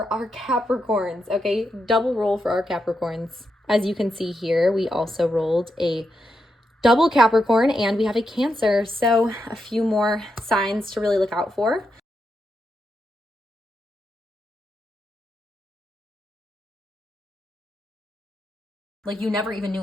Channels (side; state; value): both; normal; correlation 0.84